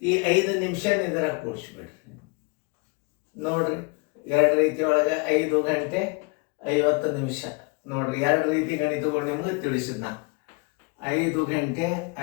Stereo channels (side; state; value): right; quieter; 31.1 dB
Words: 5 ನಿಮಿಷ ಇದರಾಗ ಕೂಡಿಸ್ಬಿಡ್ರಿ. ನೋಡ್ರಿ, 2 ರೀತಿ ಒಳಗೆ 5 ಗಂಟೆ 50 ನಿಮಿಷ. ನೋಡ್ರಿ, 2 ರೀತಿ ಗಣಿತಗಳು ನಿಮ್ಗೆ ತಿಳಿಸಿದ್ ನಾ. 5 ಗಂಟೆ